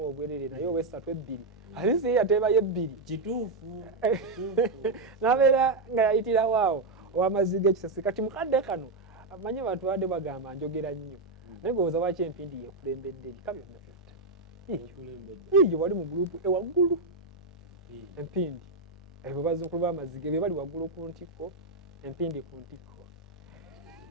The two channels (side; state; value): left; quieter; 3.2 dB